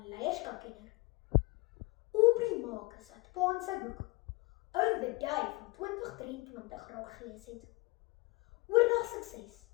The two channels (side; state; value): right; quieter; 24.4 dB